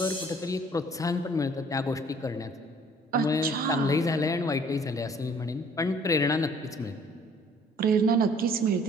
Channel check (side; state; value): both; normal; correlation 0.56